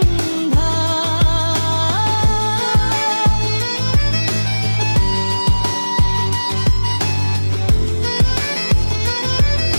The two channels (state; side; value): inverted; both; correlation -1.00